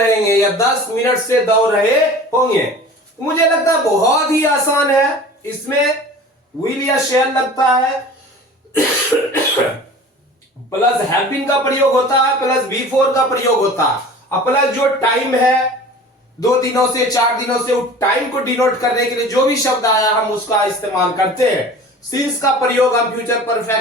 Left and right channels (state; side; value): normal; both; correlation 0.41